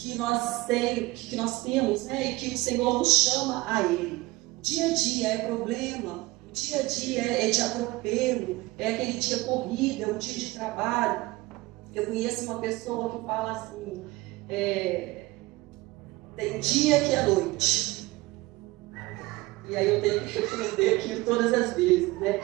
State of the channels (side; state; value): left; quieter; 21.1 dB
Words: nós temos, né? E que o Senhor nos chama a Ele. Dia a dia é problema, dia a dia é de atropelo, é aquele dia corrido, é um dia de trabalho. Eu conheço uma pessoa que fala assim, tem dia que é noite. E aí eu tenho que responder aquilo todas as vezes, né?